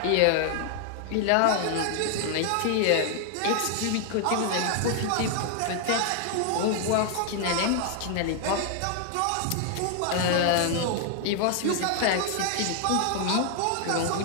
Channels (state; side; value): different; both; correlation 0.00